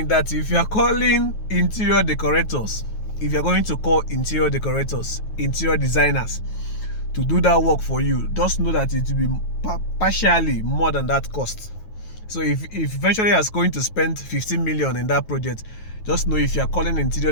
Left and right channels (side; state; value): right; late; 9.3 ms